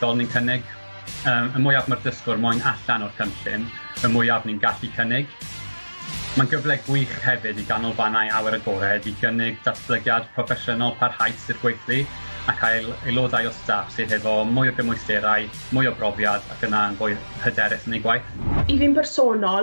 ni'n cynnig. Y mwyaf mae'r dysgwr moyn allan o'r cynllun, y mwyaf ni'n gallu cynnig. Mae'n gyfle gwych hefyd i ganolfannau awyr agored i gynnig datblygiad proffesiynol parhaus i'r gweithlu, a cael aelodau o staff sydd efo mwy o gymwysterau, mwy o brofiad ac yna yn fwy hyderus yn ei gwaith. I fi'n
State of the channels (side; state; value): both; inverted; correlation -1.00